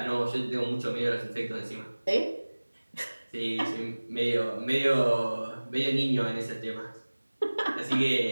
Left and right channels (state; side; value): inverted; both; correlation -1.00